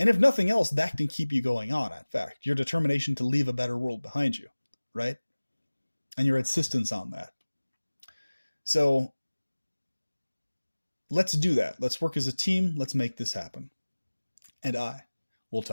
if nothing else, that can keep you going on, in fact. Your determination to leave a better world behind you, right? And your insistence on that. So let's do that. Let's work as a team. Let's make this happen. And I will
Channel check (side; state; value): both; inverted; correlation -1.00